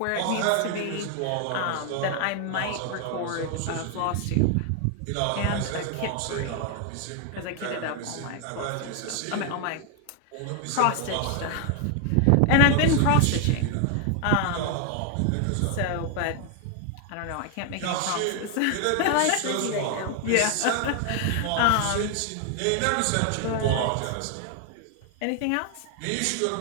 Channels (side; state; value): both; different; correlation 0.00